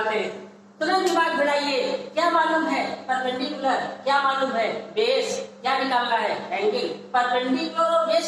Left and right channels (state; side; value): identical; both; correlation 1.00